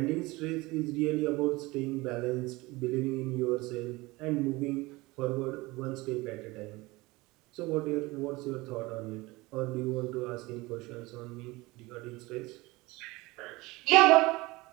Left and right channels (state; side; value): quieter; left; 21.9 dB